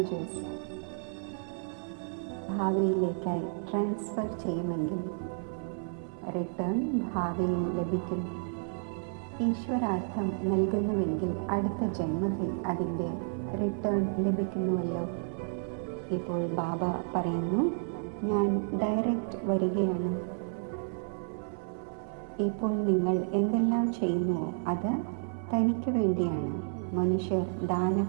ഭാവിയിലേക്കായി ട്രാൻസ്ഫർ ചെയ്യുമെങ്കിൽ റിട്ടേൺ ഭാവിയിൽ ലഭിക്കും. ഈശ്വരാർത്ഥം നൽകുന്നുവെങ്കിൽ അടുത്ത ജന്മത്തിൽ അതിൻ്റെ റിട്ടേൺ ലഭിക്കുന്നുവല്ലോ. ഇപ്പോൾ ബാബ പറയുന്നു, ഞാൻ ഡയറക്റ്റ് വരികയാണ്. ഇപ്പോൾ നിങ്ങൾ എന്തെല്ലാം ചെയ്യുന്നുവോ അത് തനിക്ക് വേണ്ടിയാണ്. മനുഷ്യർ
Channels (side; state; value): left; silent; 57 dB below the other